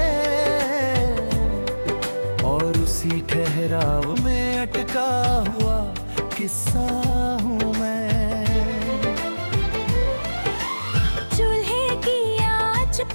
और उसी ठहराव में अटका हुआ किस्सा हूँ मैं। चूल्हे की आंच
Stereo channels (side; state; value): both; inverted; correlation -1.00